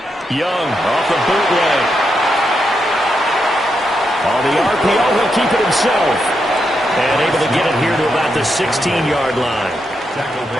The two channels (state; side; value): normal; both; correlation 0.83